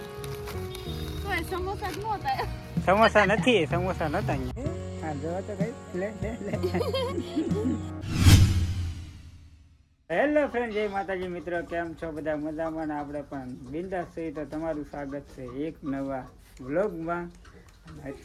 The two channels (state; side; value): identical; both; correlation 1.00